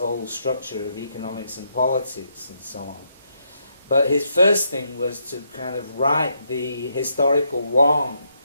structure of economics and politics and so on. But his first thing was to kind of right the historical wrong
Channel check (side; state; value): both; inverted; correlation -0.77